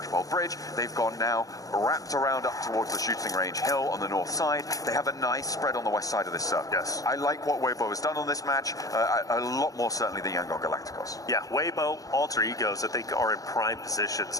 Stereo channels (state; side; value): late; right; 0.17 ms